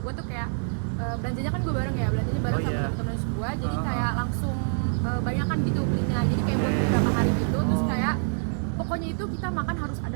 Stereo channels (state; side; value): silent; left; 61 dB below the other